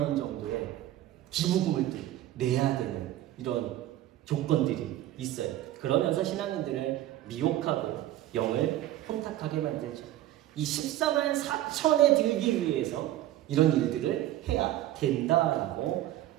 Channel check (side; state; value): left; quieter; 14.0 dB